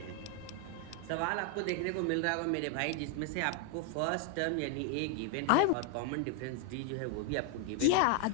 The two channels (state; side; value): different; both; correlation 0.00